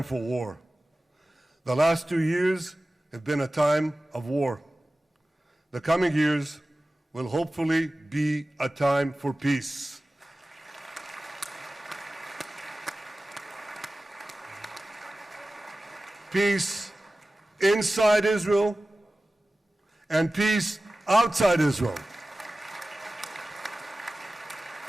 for war. The last 2 years have been a time of war. The coming years will hopefully be a time for peace. Peace inside Israel and peace outside Israel.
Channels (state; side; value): normal; both; correlation 0.96